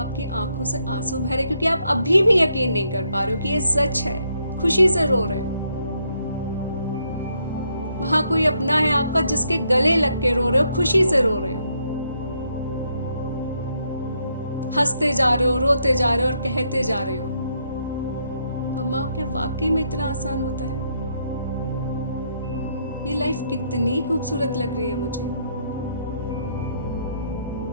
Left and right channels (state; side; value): inverted; both; correlation -0.75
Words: आंखों से आंसू बह रहे क्योंकि आप अभी भी यकीन नहीं कर पा रहे हो कि ये सच है। खुशी से रो रहे हो। वहां कोई अपना है आपका जिसके गले लग के रो रहे हो, खुशी से रो रहे हो, हंसते जा रहे हो, रोते जा रहे हो और कहते जा रहे हो। अम्मा क्या वाकई में इतना आसान होता है? ये लाइफ कितनी खूबसूरत लग रही है मुझे।